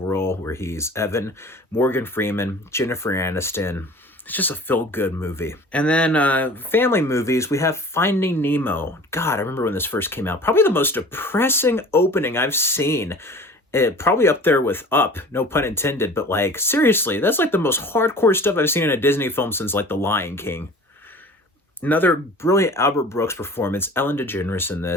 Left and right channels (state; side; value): normal; both; correlation 0.43